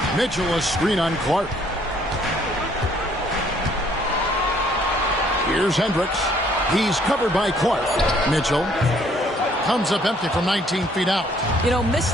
Mitchell a screen on Clark. Here's Hendricks. He's covered by Clark. Mitchell comes up empty from 19 feet out. You know, missed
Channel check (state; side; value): normal; both; correlation 0.63